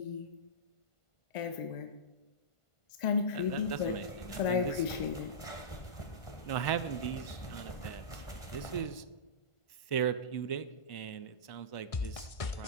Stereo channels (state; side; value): late; right; 1.5 ms